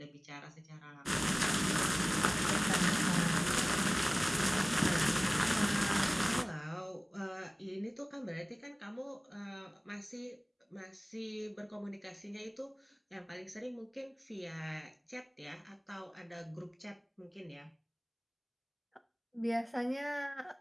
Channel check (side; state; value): both; identical; correlation 1.00